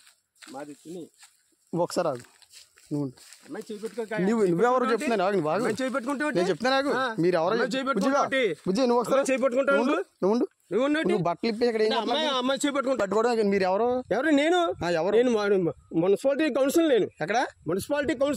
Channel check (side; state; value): both; identical; correlation 1.00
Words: మాది తుని. ఒకసారి ఆగు. నువ్వెవరు చెప్తున్నాను నేను చెప్తాను నాకు. మీరు ఎవరో బుజ్జి నువ్వు ఒకసారి నువ్వు బట్టలు ఇప్పి ఇక్కడ పట్టుకోవడం. మీరు ఎవరు? నేను ఎవరు? నేను మున్సిపాలిటీ కౌన్సిల్. నేను ఎక్కడ? Municipality